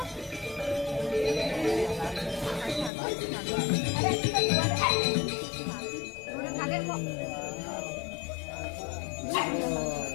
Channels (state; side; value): drops out; right; at 2.9 s